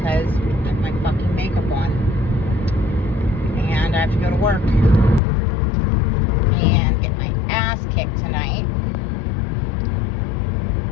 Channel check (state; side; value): drops out; right; at 5.2 s